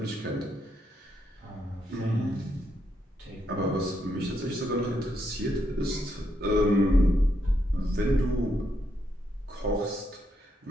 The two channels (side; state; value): both; normal; correlation 0.78